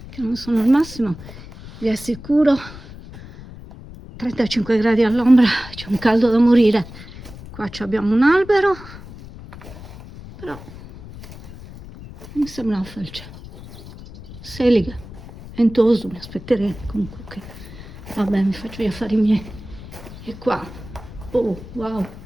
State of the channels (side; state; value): left; noise; rumble, 15 dB below the sound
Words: che non sono al massimo, vi assicuro. 35 gradi all'ombra, c'è un caldo da morire. Qua abbiamo un albero, però mi sembra una felce. Seliga, Ventoso, mi aspetteremo comunque che... Vabbè, mi faccio gli affari miei. E qua, oh wow,